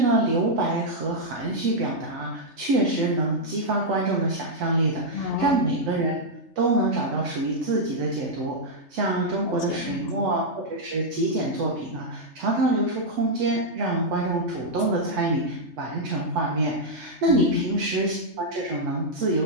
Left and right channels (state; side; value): late; left; 3.3 ms